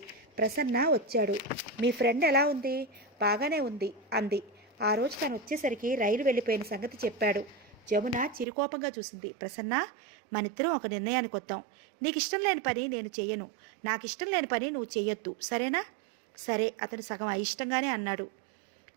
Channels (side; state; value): left; drops out; at 8.5 s